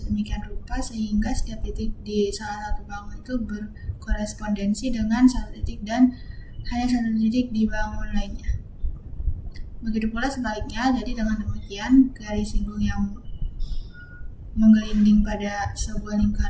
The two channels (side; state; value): both; identical; correlation 1.00